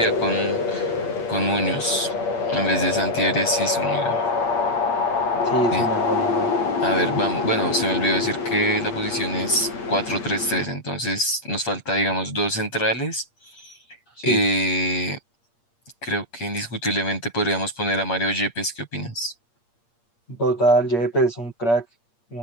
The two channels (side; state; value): right; late; 8.6 ms